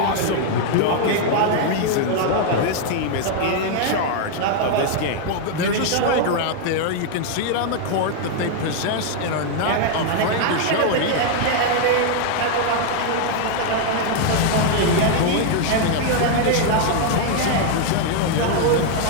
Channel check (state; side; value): different; both; correlation 0.00